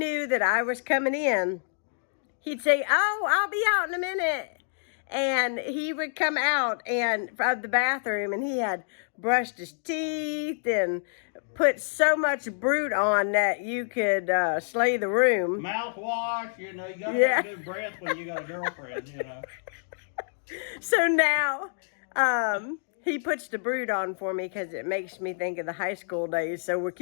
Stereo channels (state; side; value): silent; right; digital silence